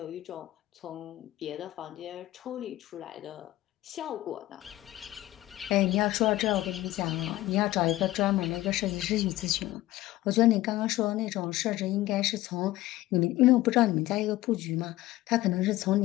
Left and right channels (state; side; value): quieter; right; 16.4 dB